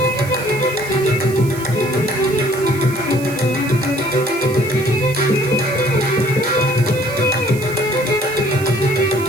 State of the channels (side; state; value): right; noise; hiss, 16 dB below the sound